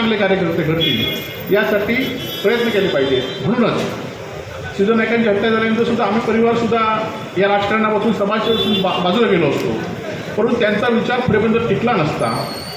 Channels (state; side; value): identical; both; correlation 1.00